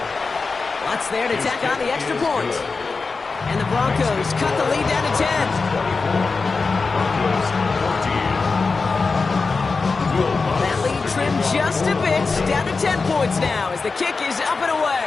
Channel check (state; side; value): quieter; right; 4.3 dB